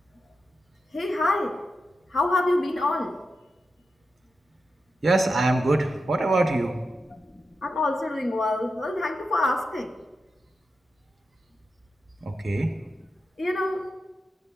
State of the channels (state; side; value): normal; both; correlation 0.89